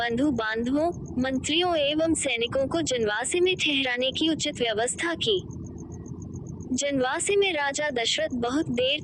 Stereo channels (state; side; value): identical; both; correlation 1.00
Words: बांधवों, मंत्रियों एवं सैनिकों को जनवासे में ठहराने की उचित व्यवस्था की। जनवासे में राजा दशरथ बहुत देर